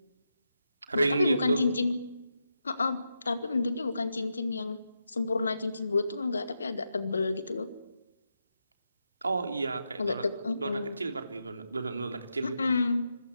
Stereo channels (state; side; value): inverted; both; correlation -0.85